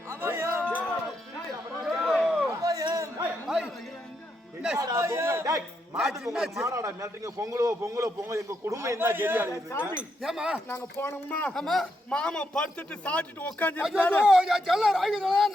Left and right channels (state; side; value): normal; both; correlation 0.80